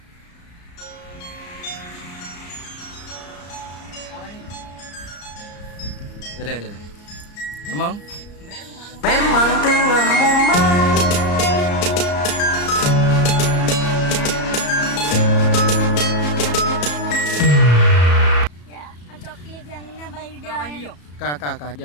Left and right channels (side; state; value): right; late; 34 ms